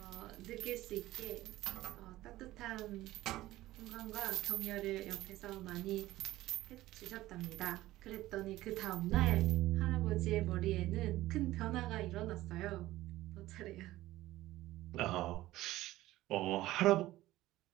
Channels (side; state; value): left; quieter; 16.2 dB